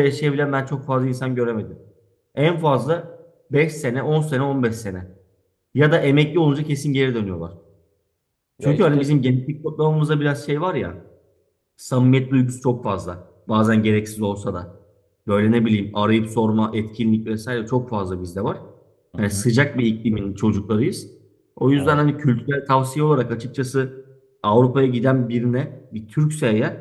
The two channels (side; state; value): both; identical; correlation 1.00